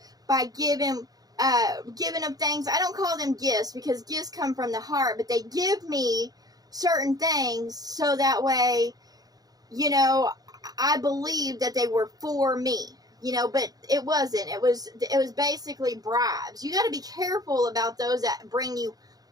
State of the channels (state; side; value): late; left; 0.18 ms